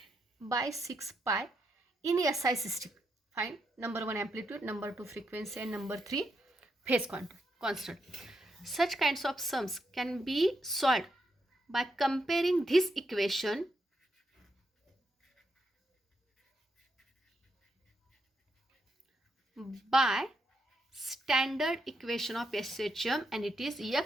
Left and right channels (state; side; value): normal; both; correlation 0.81